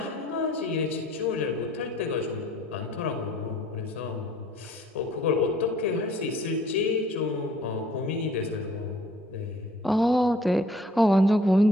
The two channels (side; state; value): both; normal; correlation 0.56